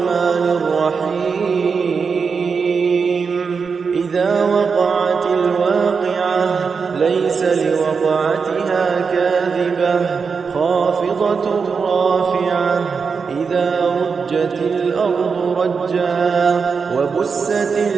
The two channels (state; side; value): quieter; left; 5.4 dB